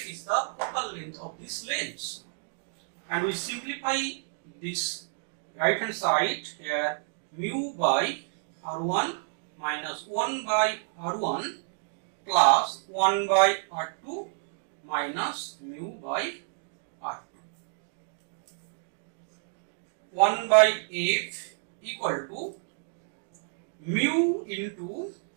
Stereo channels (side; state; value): left; silent; digital silence